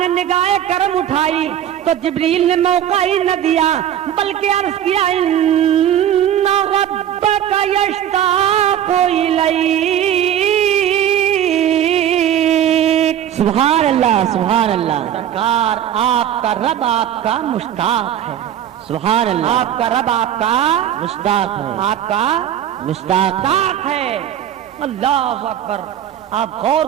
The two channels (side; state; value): left; quieter; 10.5 dB